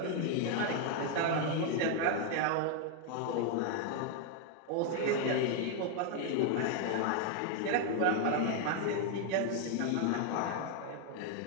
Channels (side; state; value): both; different; correlation 0.00